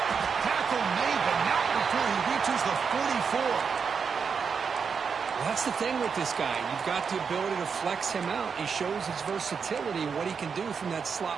Tackle made, but not before he reaches the 44. Well, that's the thing with this guy. You've got the ability to flex him out. He shows his versatility and what he can do from that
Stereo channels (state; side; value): quieter; left; 6.0 dB